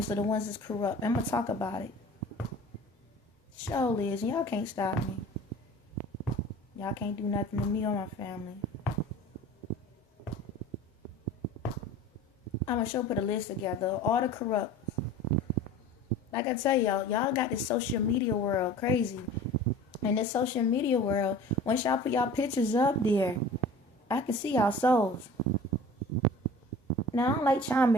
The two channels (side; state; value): both; normal; correlation 0.41